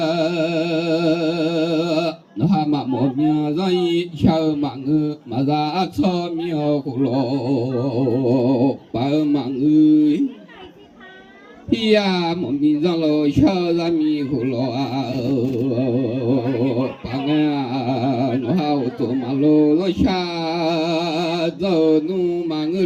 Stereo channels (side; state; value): both; identical; correlation 1.00